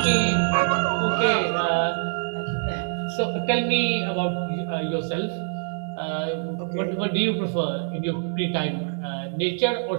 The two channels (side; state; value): left; silent; 62 dB below the other